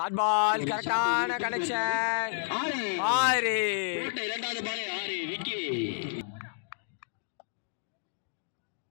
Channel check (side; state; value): right; silent; digital silence